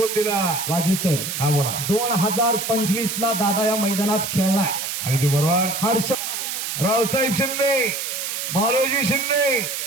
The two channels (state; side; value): noise; right; hiss, 4 dB below the sound